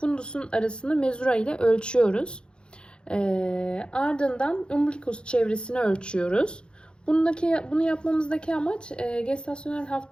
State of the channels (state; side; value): late; right; 0.052 ms